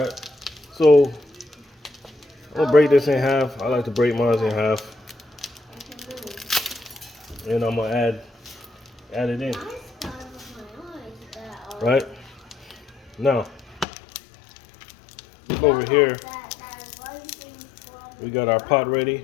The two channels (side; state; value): right; drops out; at 13.9 s